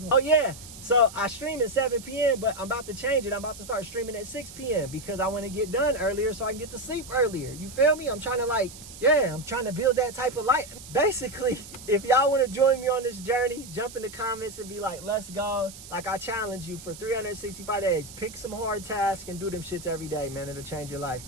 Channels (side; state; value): right; noise; hiss, 15 dB below the sound